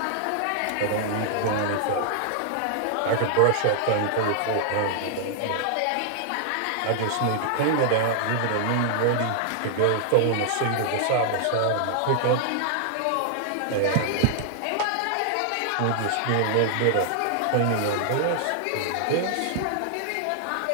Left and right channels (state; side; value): different; both; correlation 0.00